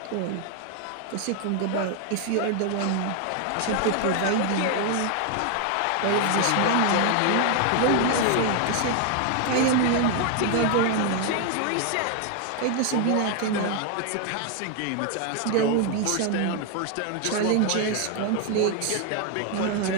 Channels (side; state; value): both; different; correlation 0.01